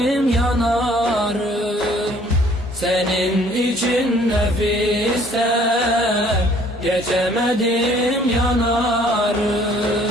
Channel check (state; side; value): normal; both; correlation 0.58